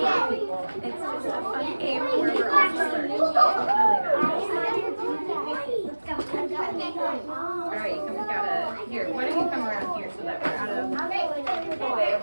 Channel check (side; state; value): both; inverted; correlation -1.00